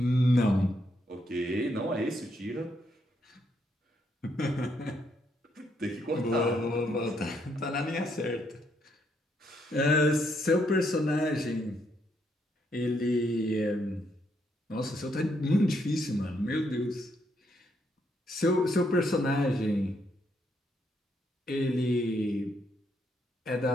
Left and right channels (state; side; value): normal; both; correlation 0.75